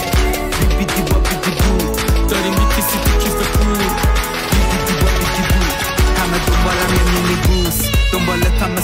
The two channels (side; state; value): both; identical; correlation 1.00